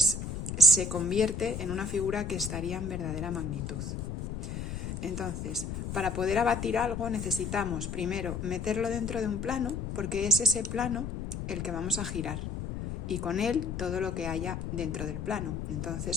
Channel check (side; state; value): left; noise; rumble, 5 dB below the sound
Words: se convierte en una figura que estaría en verdadera magnitud. Entonces, para poder abatir algo necesitamos primero meterlo dentro de un plano, porque es ese plano el que vamos a girar, y con él todo lo que haya dentro del plano.